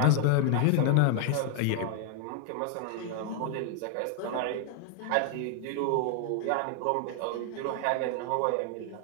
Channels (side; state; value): both; different; correlation 0.00